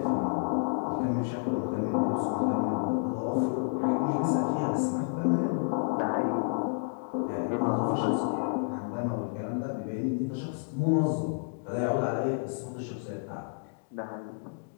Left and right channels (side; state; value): right; silent; digital silence